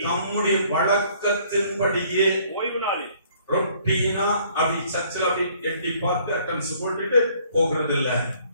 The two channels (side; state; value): both; inverted; correlation -0.60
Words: ஓய்வு நாளில் ரொட்டீனா அப்படி சர்ச்சில் அப்படி எட்டி பார்த்து அட்டன்ஸ் போட்டுட்டு போகிறது இல்ல,